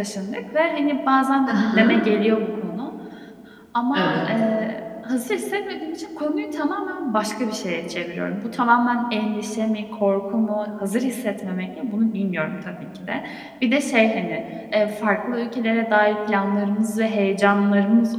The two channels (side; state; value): both; identical; correlation 1.00